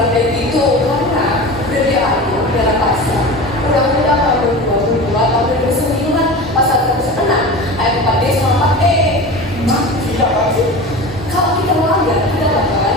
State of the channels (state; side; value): normal; both; correlation 0.31